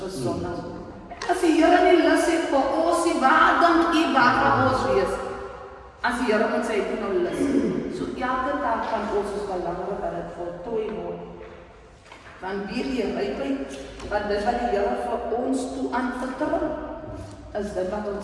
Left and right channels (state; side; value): identical; both; correlation 1.00